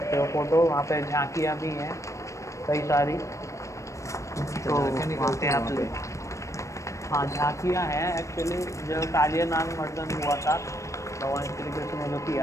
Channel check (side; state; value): right; late; 0.15 ms